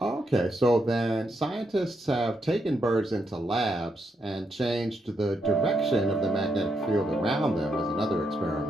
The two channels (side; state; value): both; normal; correlation 0.80